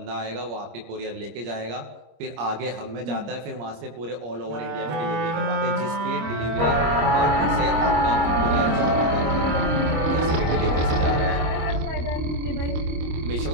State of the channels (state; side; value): late; left; 26 ms